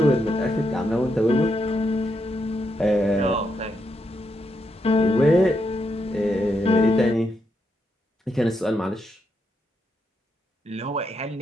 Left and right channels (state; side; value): normal; both; correlation 0.81